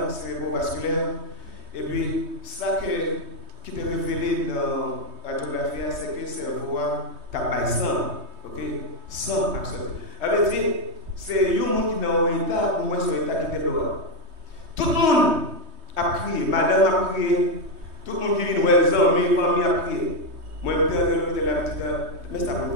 cérébrovasculaire. Et puis, ça qui te révélé dans la radiographie, c'est que le cerveau a sang. Ok? Sang absolu. Ça veut dire, c'est un monde qui est dans un état, ou moins sur un état qui est dehors. Tout le monde a crié, madame a crié, tout le monde qui vient nous les amis, famille a crié. Moi, je vais la petite, mais ça va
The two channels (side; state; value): left; late; 3.2 ms